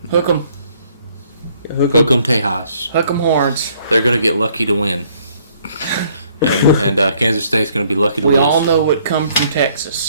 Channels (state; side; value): inverted; both; correlation -0.64